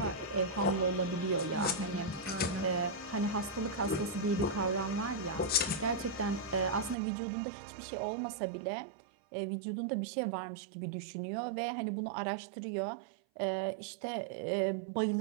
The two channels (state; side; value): drops out; left; at 7.0 s